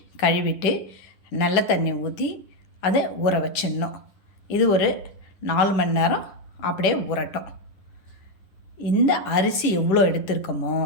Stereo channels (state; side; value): late; right; 10 ms